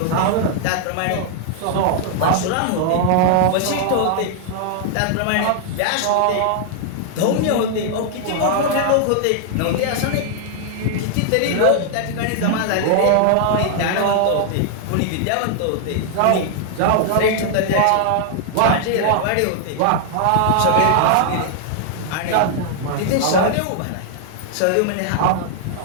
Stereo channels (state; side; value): different; both; correlation 0.00